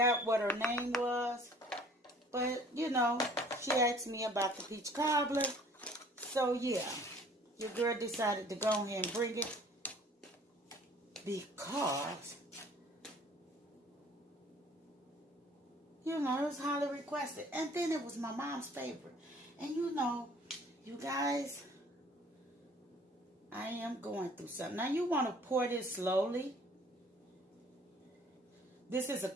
what her name was, but you know, she asked me about the peach cobbler. So yeah, your girl decided to go ahead and bring it because, you know, it was highly requested. And then it was my mom's favorite. And you know, you guys, I am going through something. Now you want to pour this slowly. This is a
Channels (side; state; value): both; normal; correlation 0.53